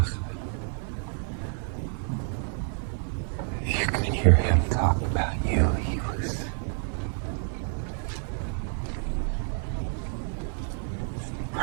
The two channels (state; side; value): silent; left; 59 dB below the other